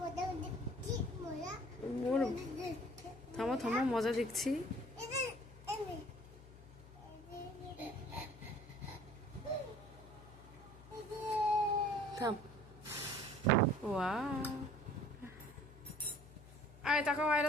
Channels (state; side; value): noise; left; hum, 19 dB below the sound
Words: থামো থামো, মজা দেখছি। থাম। ওয়াও, আয় তাকাও